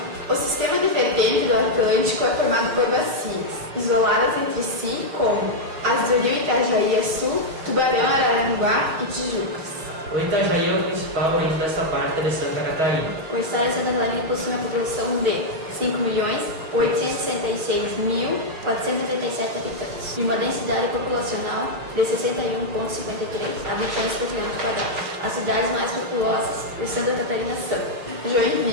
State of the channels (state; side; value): late; left; 6.1 ms